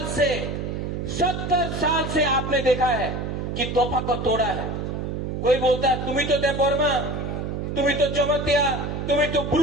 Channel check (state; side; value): noise; right; hum, 4 dB below the sound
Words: से आपने देखा है कि तोहफा को तोड़ा है। कोई बोलता है तुम्ही तो देवबर्मा, तुम्ही तो जमतिया, तुम्ही तो